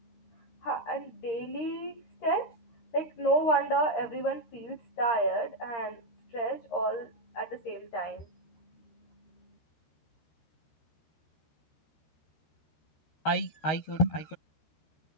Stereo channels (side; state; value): right; late; 13 ms